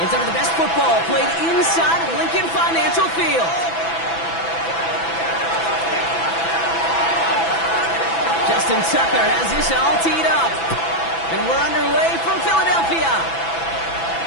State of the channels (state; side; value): late; right; 6.0 ms